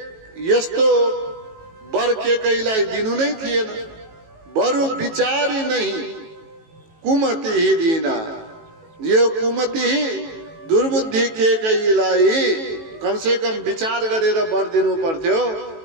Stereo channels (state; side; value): late; left; 18 ms